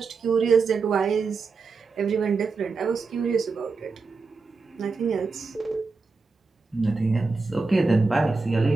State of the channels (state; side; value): quieter; left; 4.3 dB